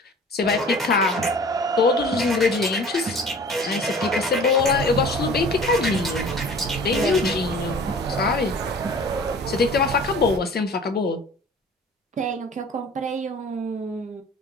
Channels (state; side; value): normal; both; correlation 0.45